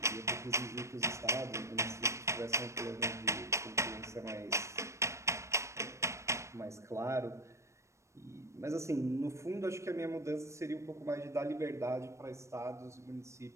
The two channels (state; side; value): late; left; 0.14 ms